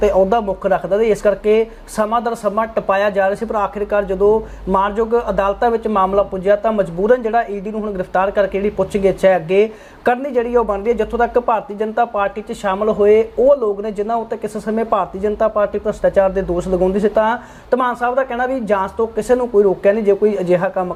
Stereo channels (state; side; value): identical; both; correlation 1.00